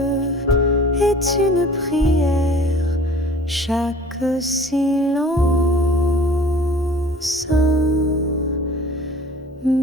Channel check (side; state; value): both; normal; correlation 0.47